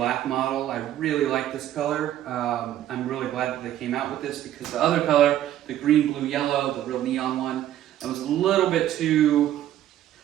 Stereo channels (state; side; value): quieter; left; 12.2 dB